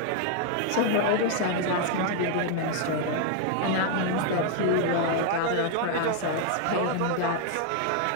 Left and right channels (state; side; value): different; both; correlation 0.00